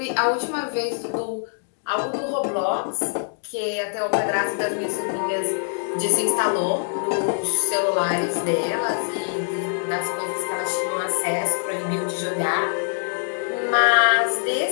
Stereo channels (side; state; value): right; silent; digital silence